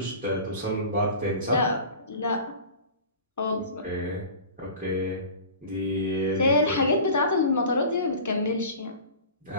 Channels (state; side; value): inverted; both; correlation -0.39